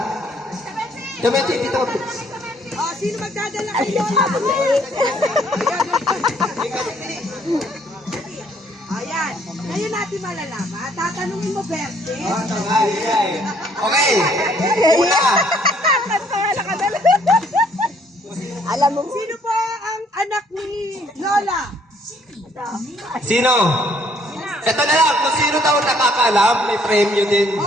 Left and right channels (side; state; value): both; normal; correlation 0.64